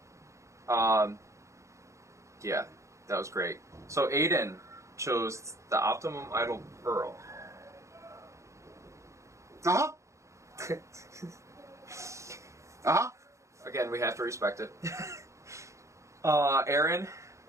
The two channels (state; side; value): late; left; 0.15 ms